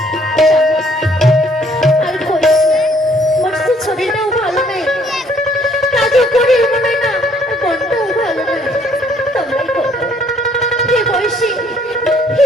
আর করিস না, মোর তো শরীরটাও ভালো নেই, কাজও করি মনে না, আর মনটাও ভালো নেই। তোমরাই বলো,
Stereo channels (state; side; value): normal; both; correlation 0.63